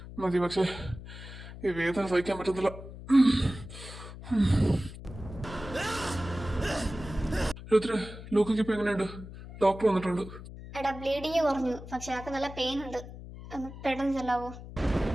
മതി. പക്ഷേ ഈ വേദന സഹിക്കാൻ പറ്റുന്നില്ല. രുദ്ര, ലൂക്കയ്ക്ക് ഇപ്പൊ എങ്ങനെയുണ്ട്? ഡോക്ടർ വന്നിട്ടുണ്ട്. എടാ ബ്ലീഡിങ് കുറഞ്ഞു, പക്ഷെ ആൾക്ക് നല്ല പെയിൻ ഉണ്ട്. ഒന്ന് പെട്ടെന്ന് ചെല്ലാവോ?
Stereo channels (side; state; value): left; noise; hum, 13 dB below the sound